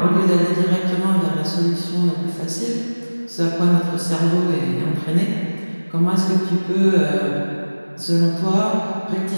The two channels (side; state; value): both; inverted; correlation -1.00